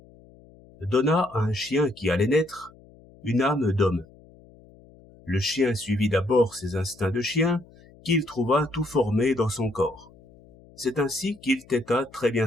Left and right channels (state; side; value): noise; left; hum, 25 dB below the sound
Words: donna à un chien qui allait naître une âme d'homme. Le chien suivit d'abord ses instincts de chien, qu'il trouva tout formés dans son corps. C'est ainsi qu'il têta très bien